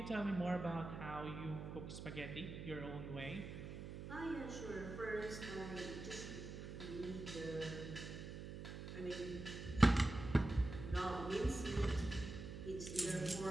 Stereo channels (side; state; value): right; noise; hum, 8 dB below the sound